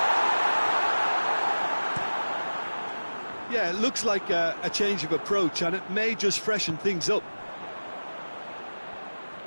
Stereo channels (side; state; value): both; inverted; correlation -1.00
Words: Yeah, it looks like a change of approach, and it may just freshen things up.